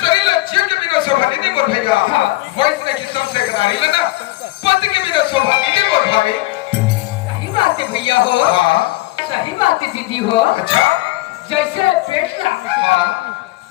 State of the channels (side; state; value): right; quieter; 19.8 dB